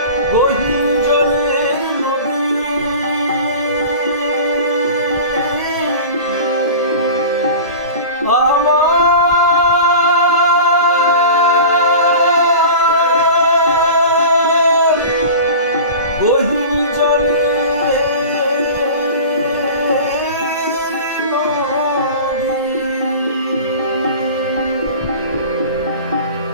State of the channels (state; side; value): inverted; both; correlation -0.35